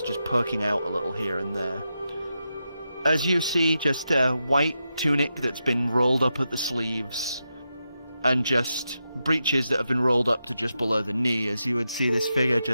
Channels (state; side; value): inverted; both; correlation -0.88